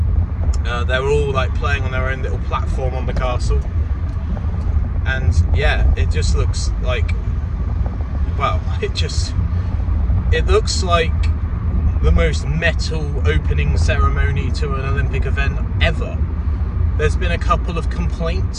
They're all like playing on their own little platform on the castle. And yeah, it just looks like, well, it looks like the most metal opening ceremony to an Olympic event ever. There's been a couple of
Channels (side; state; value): both; identical; correlation 1.00